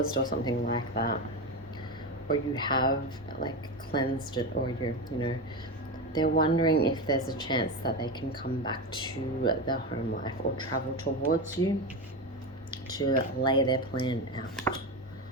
or something like that. Or you have like cleansed it, or they're wondering if there's a chance that they can come back to their home life or travel towards you to lay their plan out.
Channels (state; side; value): normal; both; correlation 0.18